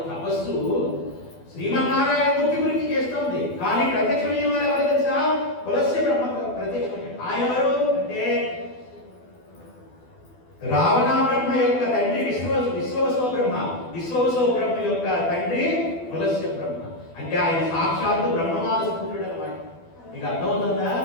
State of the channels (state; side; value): late; right; 12 ms